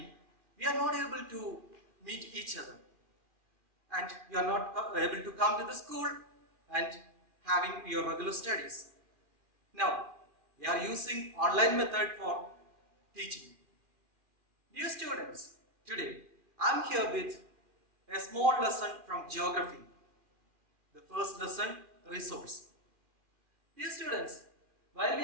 we are not able to meet each other and you are not able to come to the school and having your regular studies. Now, we are using online method for teaching. Dear students, today I am here with a small lesson from geography. The first lesson, resource. Dear students, while we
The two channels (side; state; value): left; late; 2.3 ms